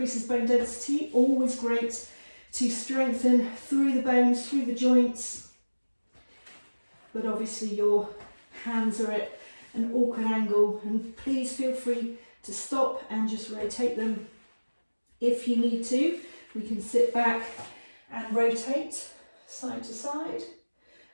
bone density, always great to strengthen through the bones, through the joints, but obviously your hands are at an awkward angle, and please feel free to stop and just rotate them if you need to. We can sit back and rotate side to side,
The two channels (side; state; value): both; inverted; correlation -1.00